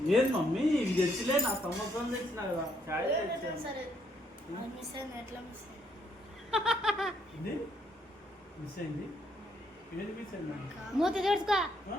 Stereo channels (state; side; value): normal; both; correlation 0.71